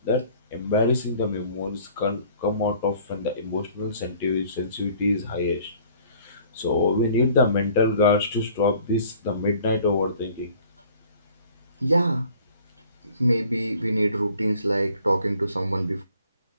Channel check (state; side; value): inverted; both; correlation -0.54